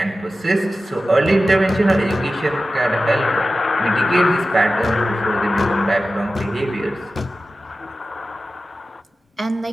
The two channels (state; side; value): normal; both; correlation 0.94